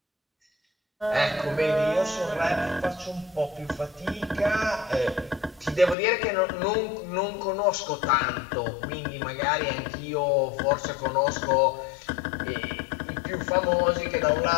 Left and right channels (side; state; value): right; drops out; at 6.0 s